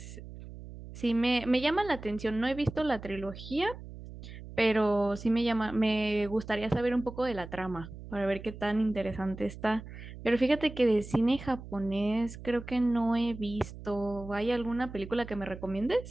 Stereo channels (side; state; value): right; noise; hum, 13 dB below the sound